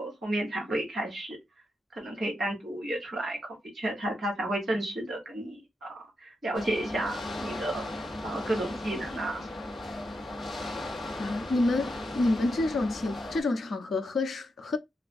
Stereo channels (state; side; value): normal; both; correlation 0.85